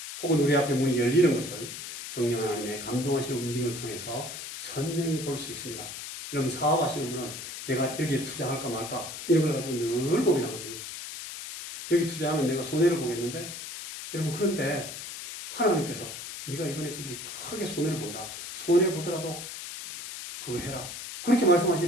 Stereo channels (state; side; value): noise; left; hiss, 9 dB below the sound